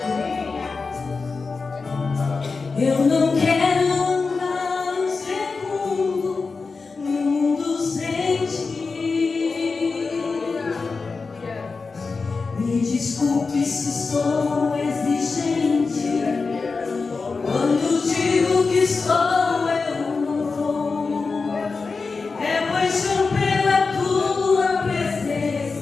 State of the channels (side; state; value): right; quieter; 4.4 dB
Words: desculpe se sou exigente. Quando digo que sou, eu não vou. É paixão pela tua